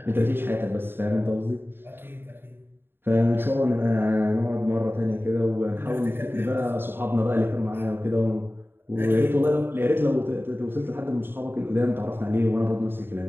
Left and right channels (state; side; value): late; left; 0.10 ms